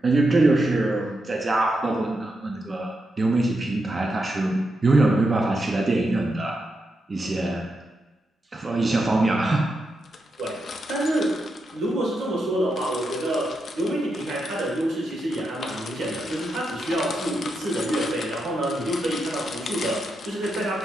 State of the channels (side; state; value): both; normal; correlation 0.85